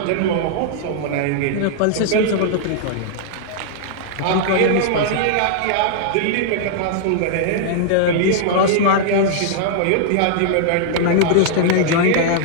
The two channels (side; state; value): both; different; correlation -0.01